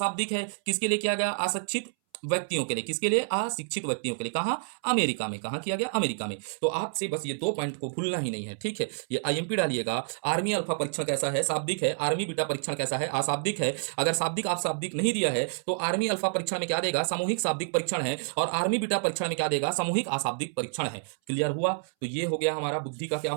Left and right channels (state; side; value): silent; left; 59 dB below the other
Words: है। किसके लिए किया गया, अशिक्षित व्यक्तियों के लिए। किसके लिए, अशिक्षित व्यक्तियों के लिए। कहा, अमेरिका में। कहा किया गया, अमेरिका में। तो आपसे बस ये दो पॉइंट को भूलना ही नहीं है, ठीक है। ये आईएमपी डालिएगा, आर्मी अल्फा परीक्षण कैसा है, शाब्दिक है। आर्मी बीटा परीक्षण कैसा है, अशाब्दिक है। अगर शाब्दिक आप शाब्दिक नहीं दिया है तो आर्मी अल्फा परीक्षण में क्या देगा, सामूहिक शाब्दिक परीक्षण है। और आर्मी बीटा परीक्षण में क्या देगा, सामूहिक अशाब्दिक परीक्षण है। क्लियर हुआ। तो ये हो गया हमारा बुद्धि का क्या